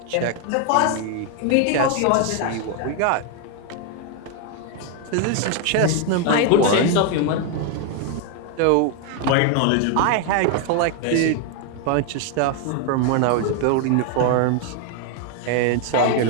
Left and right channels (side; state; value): both; different; correlation 0.01